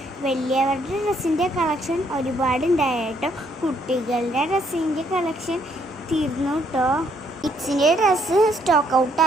വലിയവരുടെ ഡ്രസ്സിൻ്റെ കളക്ഷൻ ഒരുപാടുണ്ടായി കേട്ടോ. കുട്ടികളുടെ ഡ്രസ്സിൻ്റെ കളക്ഷൻ തീർന്നു കേട്ടോ. കിഡ്സിൻ്റെ ഡ്രസ്സ് സ്റ്റോക്ക്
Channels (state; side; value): normal; both; correlation 0.69